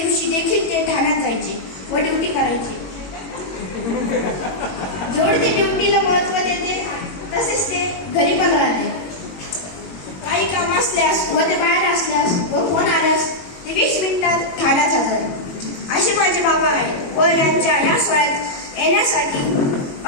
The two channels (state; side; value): late; right; 22 ms